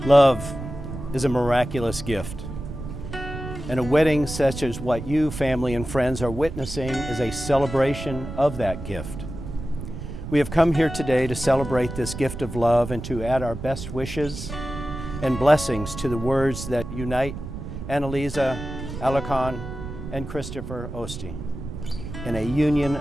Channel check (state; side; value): noise; right; rumble, 9 dB below the sound